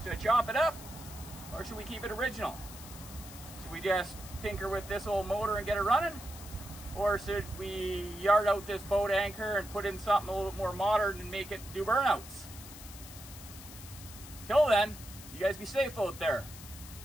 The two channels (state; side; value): noise; left; hiss, 15 dB below the sound